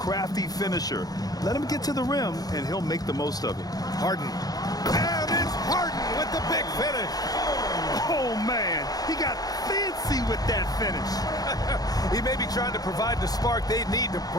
finisher. Let him get to the rim, and he'll make the most of it. Harden. And it's Harden with the big finish. Oh, man. He got fancy with that finish. He may be trying to provide the spark they need to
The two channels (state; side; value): late; right; 0.18 ms